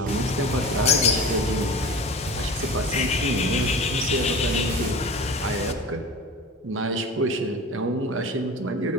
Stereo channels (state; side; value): normal; both; correlation 0.34